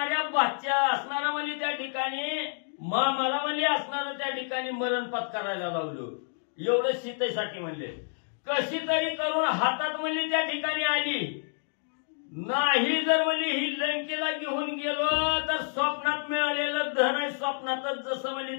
बादच्या असणारा म्हणजे त्या ठिकाणी मला म्हणजे असणारं त्या ठिकाणी मरण पत्करायला लावलं. एवढं सीतेसाठी म्हणले, कशी तरी करून हातात म्हणजे त्या ठिकाणी आली. नाही जर म्हणजे ही लंकेला घेऊन गेलो तर स्वप्नात मिळालेलं धन आहे स्वप्नातच जसं म्हणजे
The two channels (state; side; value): silent; right; digital silence